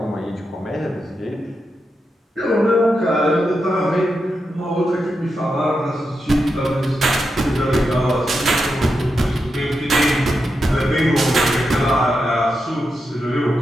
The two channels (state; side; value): normal; both; correlation 0.87